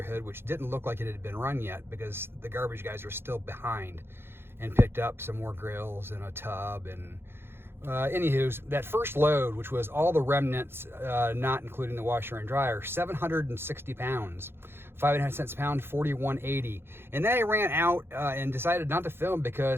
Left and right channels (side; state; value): left; late; 0.11 ms